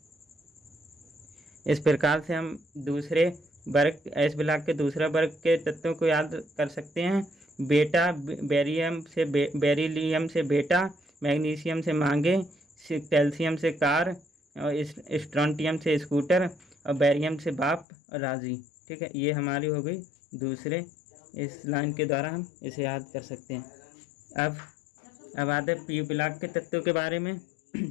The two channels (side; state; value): right; drops out; at 17.9 s